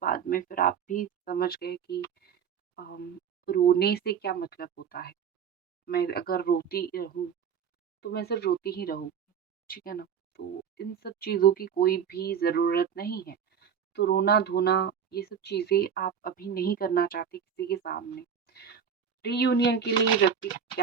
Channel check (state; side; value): quieter; left; 7.6 dB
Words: बाद में फिर आप भी समझ गए कि अम, रोने से क्या मतलब होता है। मैं अगर रोती रहूं तो मैं सिर्फ रोती ही रहूंगी, ठीक है ना। तो इन सब चीज़ों की कोई भी ज़रूरत नहीं है। तो रोना धोना ये सब चीज़ें आप अभी नहीं करना चाहते किसी के सामने। रीयूनियन के लिए व्यक्ति